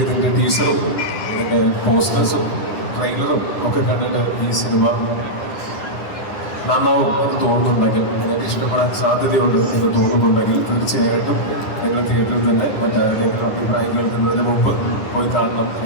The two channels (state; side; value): late; right; 9.8 ms